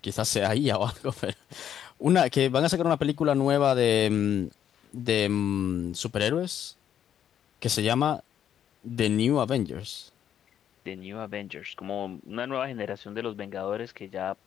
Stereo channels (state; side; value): quieter; right; 9.7 dB